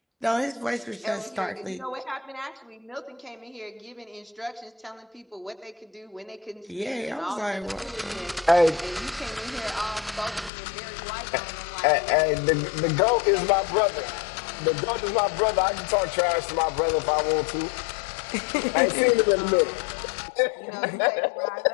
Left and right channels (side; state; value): right; drops out; at 10.5 s